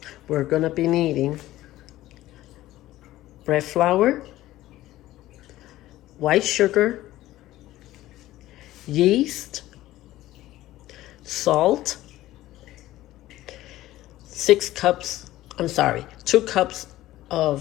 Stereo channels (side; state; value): right; quieter; 15.6 dB